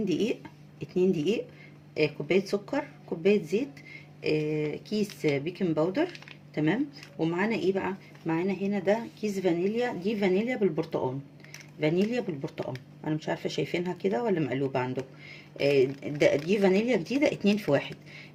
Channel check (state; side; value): identical; both; correlation 1.00